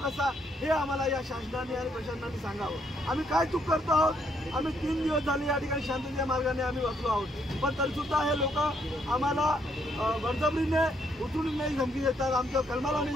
कसा हे आम्हाला या शासनाने आणि प्रशासनाने सांगावं. आम्ही काय चूक करतो आहोत? आम्ही 3 दिवस झाले या ठिकाणी शांतीच्या मार्गाने आम्ही बसलो आहोत, पण तरीसुद्धा हे लोक आम्हाला बळजबरीने उचलून धमकी देतात, आमच्या कलमाला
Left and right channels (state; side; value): normal; both; correlation 0.72